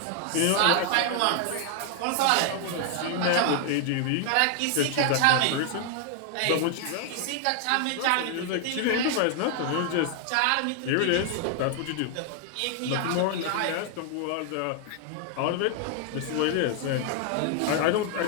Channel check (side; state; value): both; different; correlation 0.00